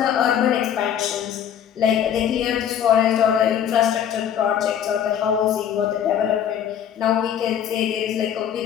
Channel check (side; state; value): right; quieter; 9.3 dB